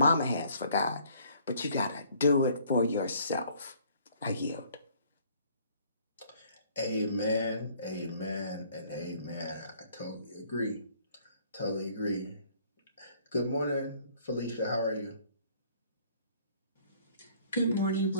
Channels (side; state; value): both; inverted; correlation -0.59